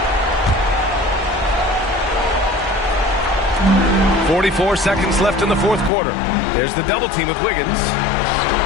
44 seconds left in the fourth quarter. There's the double team with Wiggins.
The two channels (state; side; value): drops out; right; at 5.9 s